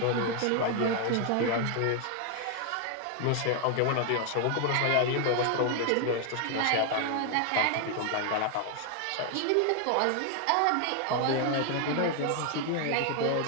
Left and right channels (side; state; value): both; different; correlation 0.00